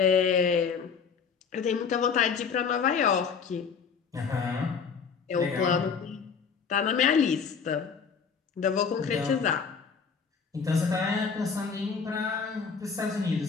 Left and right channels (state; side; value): quieter; right; 6.0 dB